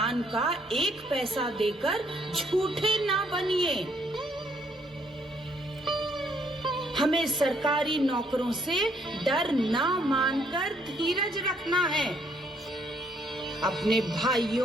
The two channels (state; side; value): normal; both; correlation 0.68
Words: का 1 पैसा देकर झूठे ना बनिए। हमें सरकारी नौकरों से डर ना मानकर धीरज रखना है। अपने